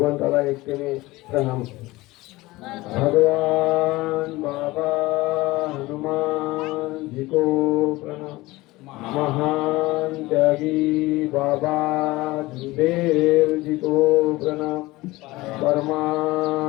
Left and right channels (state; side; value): quieter; right; 20.0 dB